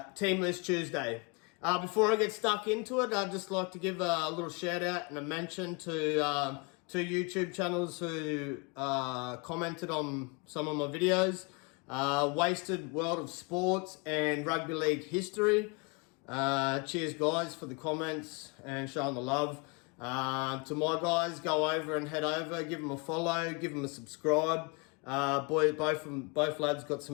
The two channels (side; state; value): right; quieter; 30.8 dB